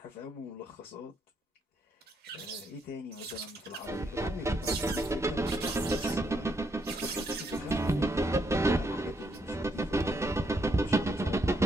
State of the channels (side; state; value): both; normal; correlation 0.76